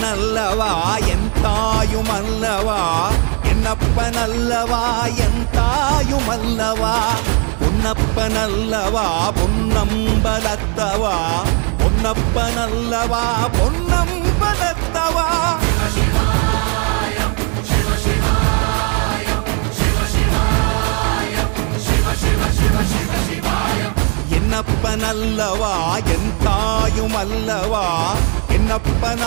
என் தாயுமல்லவா, என்னப்பனல்லவா என் தாயுமல்லவா, பொன்னப்பனல்லவா பொன்னம்பலத்தவா, பொன்னப்பனல்லவா பொன்னம்பலத்தவா. என்னப்பனல்லவா என் தாயுமல்லவா,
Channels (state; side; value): quieter; left; 37.3 dB